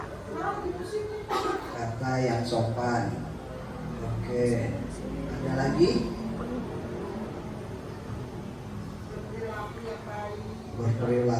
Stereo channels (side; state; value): both; identical; correlation 1.00